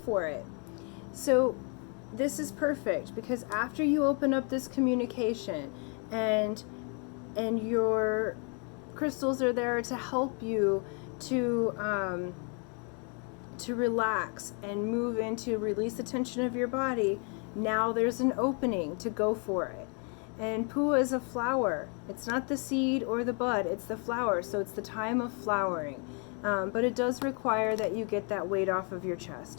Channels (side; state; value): right; quieter; 37.6 dB